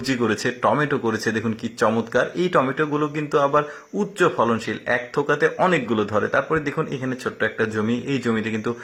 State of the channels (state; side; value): identical; both; correlation 1.00